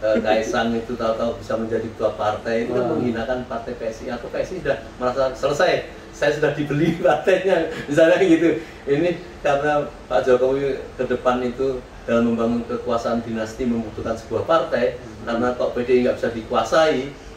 itu tahu-tahu bisa menjadi ketua partai, itu kan menghinakan partai PSI, atau PSI sudah merasa selesai, saya sudah dibeli partainya, misalnya gitu. Ini karena Pak Jokowi ke depan itu dalam membangun kekuasaan dinasti membutuhkan sebuah partai, karena kok PDI nggak bisa dikuasai,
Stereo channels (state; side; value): identical; both; correlation 1.00